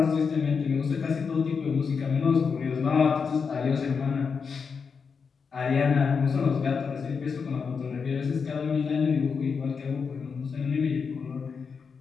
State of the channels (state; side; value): quieter; right; 5.7 dB